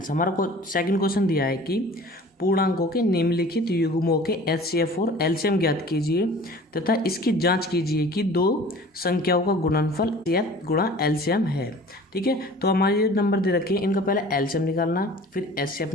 हमारा को सेकंड क्वेश्चन दिया है कि पूर्णांकों के निम्नलिखित युग्मों के एचसीएफ और एलसीएम ज्ञात कीजिए तथा इसकी जांच कीजिए कि दो संख्याओं का गुणनफल एचसीएफ गुणा एलसीएम है। ठीक है, तो हमारे ये नंबर दे रखे हैं, इनका पहले एलसीएम निकालना, फिर एचसीएफ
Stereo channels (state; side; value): normal; both; correlation 0.45